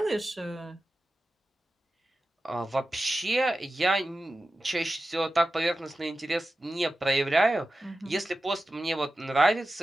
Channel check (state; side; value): normal; both; correlation 0.93